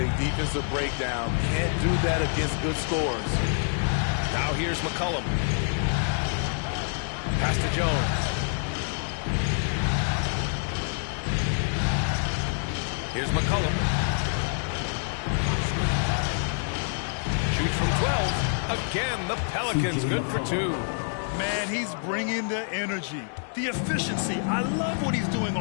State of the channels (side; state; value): right; silent; digital silence